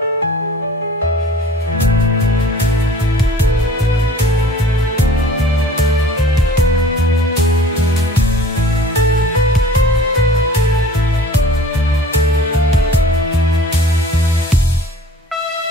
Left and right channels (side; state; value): both; normal; correlation 0.47